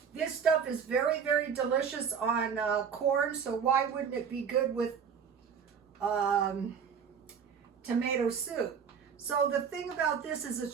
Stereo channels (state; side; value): quieter; left; 7.0 dB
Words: this stuff is very, very delicious on corn. So why wouldn't it be good with tomato soup? So the thing about this is